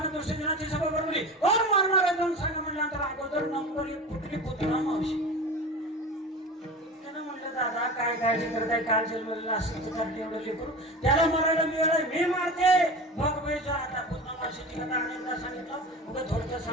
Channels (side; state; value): both; normal; correlation 0.32